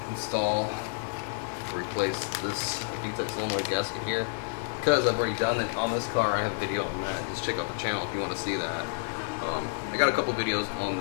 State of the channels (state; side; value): silent; right; 58 dB below the other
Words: install replace this VTEC solenoid gasket here, because I've already done it on this car. I have a video on that. Just check out the channel if you want to see that. I got a couple videos on